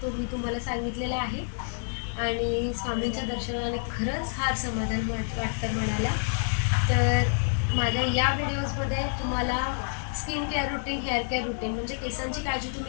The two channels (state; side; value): silent; right; 59 dB below the other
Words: तो मी तुम्हाला सांगितलेला आहे. आणि स्वामींच्या दर्शनाने खरंच फार समाधान वाटतं मनाला. तर माझ्या या व्हिडिओजमध्ये तुम्हाला skin care routine, hair care routine म्हणजे केसांची काळजी